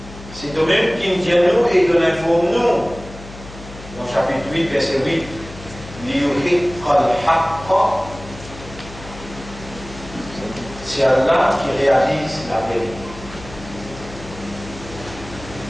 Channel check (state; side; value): noise; left; hum, 15 dB below the sound